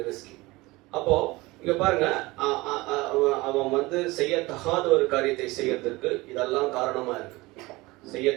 அப்போ இங்க பாருங்க, அவன் செய்யத்தகாத ஒரு காரியத்தை செய்யறதுக்கு இதெல்லாம் காரணமா இருக்கு.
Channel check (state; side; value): quieter; left; 21.6 dB